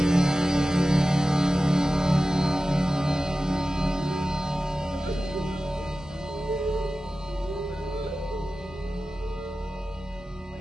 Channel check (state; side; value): normal; both; correlation 0.95